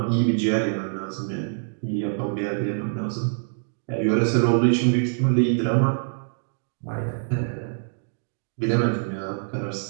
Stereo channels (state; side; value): silent; left; digital silence